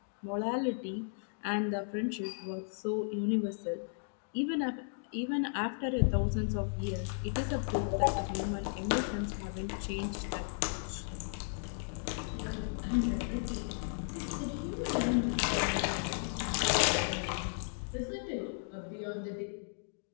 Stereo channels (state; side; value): silent; right; digital silence